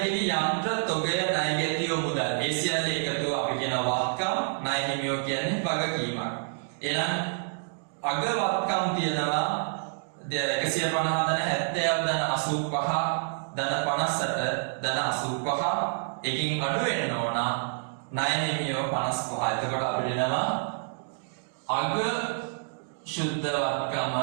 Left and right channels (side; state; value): left; silent; digital silence